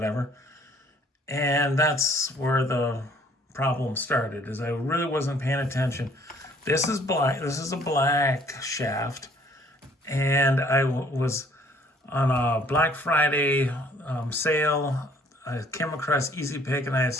and that's where the problem started. Is I really wasn't paying attention. This is black. This is a black shaft, and I was on a Black Friday sale. I came across Easy Pick, and I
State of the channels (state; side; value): normal; both; correlation 0.59